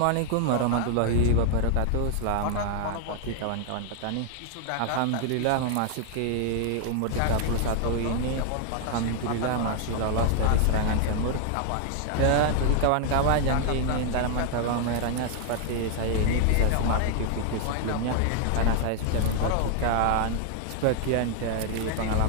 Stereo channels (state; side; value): different; both; correlation 0.00